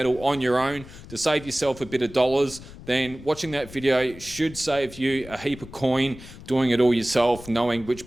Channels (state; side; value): noise; left; rumble, 17 dB below the sound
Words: on your own to save yourself a bit of dollars, then watching that video should save you a heap of coin doing it all yourself, knowing which